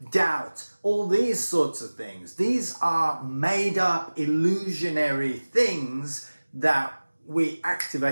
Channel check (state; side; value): inverted; both; correlation -1.00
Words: doubt, all these sorts of things. These are made up, illusionary things that we